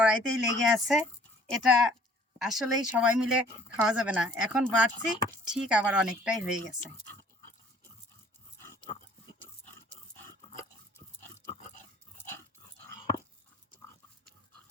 লেগে আছে, এটা আসলেই সবাই মিলে খাওয়া যাবে না। এখন বাড়ছি, ঠিক আবার অনেকটাই হয়ে গেছে।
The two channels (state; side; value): normal; both; correlation 0.56